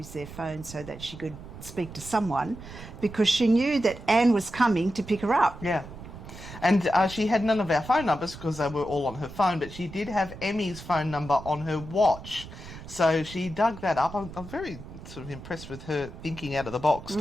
their phone so that she could speak to someone, because she knew that Anne was coming to pick her up. Yeah. And she had none of our phone numbers because they were all on her phone, but she did have Emmy's phone number on her watch. So she dug that up. I'm very sort of impressed with her thinking out of the box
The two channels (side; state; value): right; noise; rumble, 14 dB below the sound